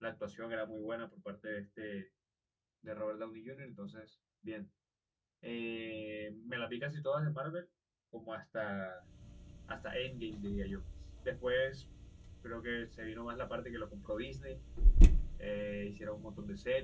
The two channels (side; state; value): both; identical; correlation 1.00